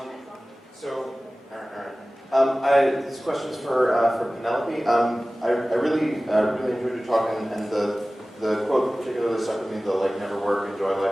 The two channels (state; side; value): normal; both; correlation 0.97